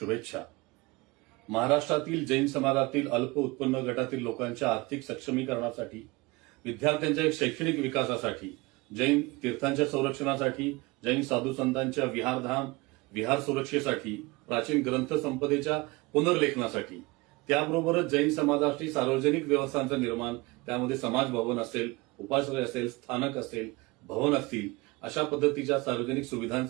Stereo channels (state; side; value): quieter; left; 23.7 dB